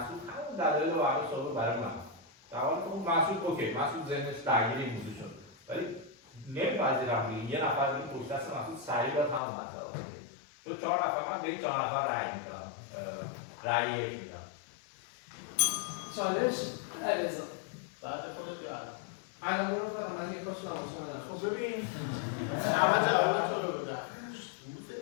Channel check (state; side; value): drops out; right; at 9.4 s